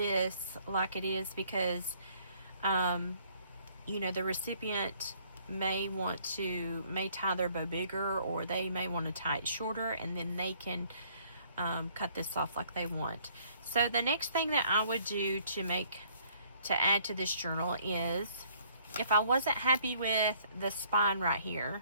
like it is because you know, the recipient may tie their bow bigger, or they may want to tie it shorter, and then they can cut this off like they want. So the next thing that I would do to add to this journal is, if I wasn't happy with the spine right here,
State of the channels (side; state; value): both; inverted; correlation -0.62